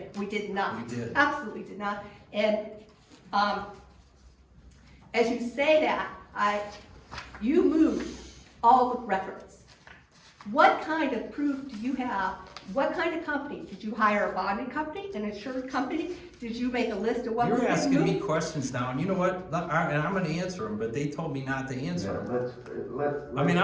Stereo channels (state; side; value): identical; both; correlation 1.00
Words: We did not. We did. Absolutely did not. And as you say that, you moved all the records. What kind of proof do you have? What kind of company? Did you hire a bonding company, an insurance company? Did you make a list of what was You're being asking me moved? questions now, and you know what, and I'm gonna answer them, but they told me not to answer them. Let's. I mean,